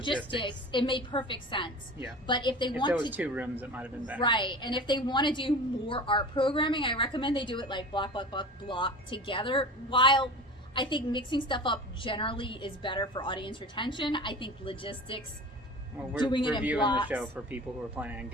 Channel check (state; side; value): normal; both; correlation 0.35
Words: it made perfect sense. Yeah. But if there was 2 rooms, it might have been better. Right. And if they want to do more art programming, I recommend they do it like block together. While I think mixing stuff up generally is better for audience retention, I think logistics. Well, we're reviewing the show for people who are planning on